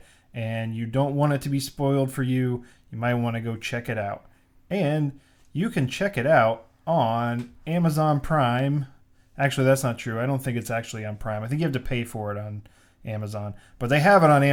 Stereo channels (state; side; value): identical; both; correlation 1.00